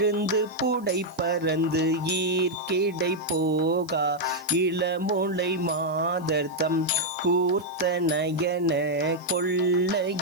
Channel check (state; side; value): noise; right; hiss, 27 dB below the sound